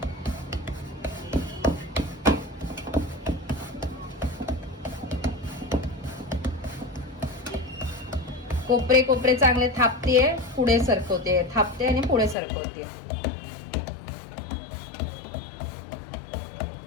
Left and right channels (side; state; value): right; drops out; at 12.4 s